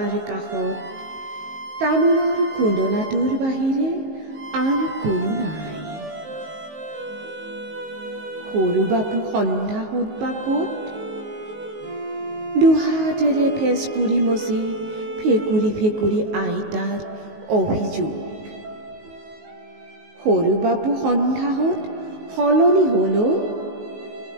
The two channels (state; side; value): late; left; 19 ms